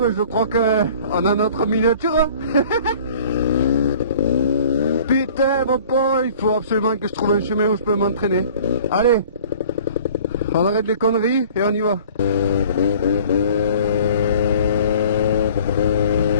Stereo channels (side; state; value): both; inverted; correlation -0.49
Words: je crois qu'on a notre miniature hein. Putain mon pauvre, il faut absolument que je trouve un chemin où je peux m'entraîner. Allez, on arrête les conneries et on y va.